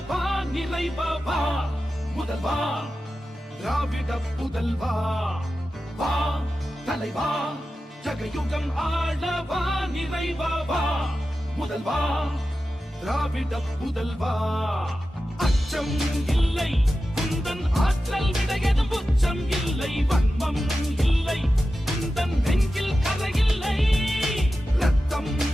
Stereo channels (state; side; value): normal; both; correlation 0.93